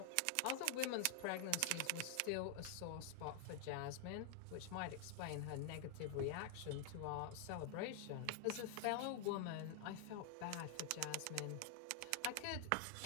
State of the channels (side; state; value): both; different; correlation 0.00